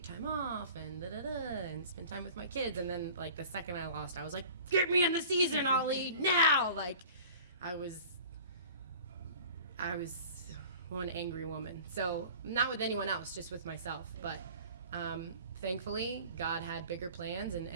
time off and and spend time with my kids, and then like the second I lost, I was like, get me in the season, Ollie, now! Like I was one angry woman. So not with anyone else, just with myself. But thankfully, God had bigger plans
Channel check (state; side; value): inverted; both; correlation -0.44